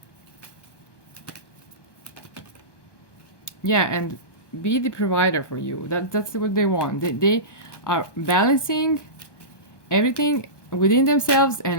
Yeah, and be the provider for you. That's what they want. They are balancing everything within themselves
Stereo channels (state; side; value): late; right; 1.2 ms